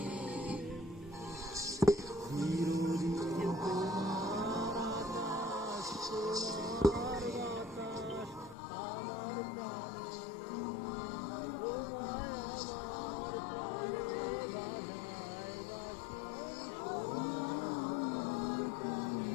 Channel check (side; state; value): right; drops out; at 8.6 s